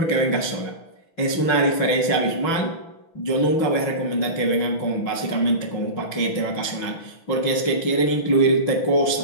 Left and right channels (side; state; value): right; late; 6.1 ms